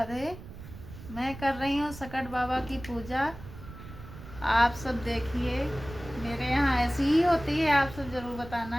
मैं कर रही हूँ सकट बाबा की पूजा। आप सब देखिए, मेरे यहाँ ऐसी ही होती है। आप सब ज़रूर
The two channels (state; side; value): noise; right; rumble, 14 dB below the sound